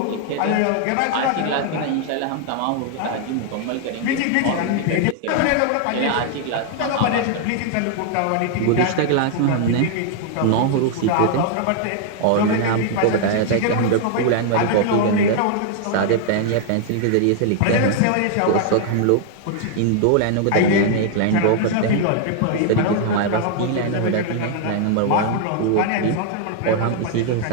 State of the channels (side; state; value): both; different; correlation 0.00